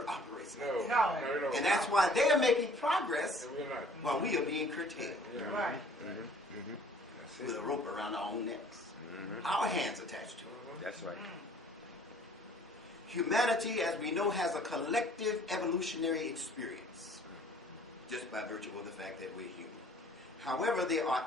operates like No. that. No. And that's why they are making progress And we're not. while we are being curtailed Yeah. Right. That's with a it. rope around our own necks. Our hands attached to it. That's right. Humanity, as we know, has a collective evolutionary experience just by virtue of the fact that we're human. However, there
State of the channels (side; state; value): both; normal; correlation 0.54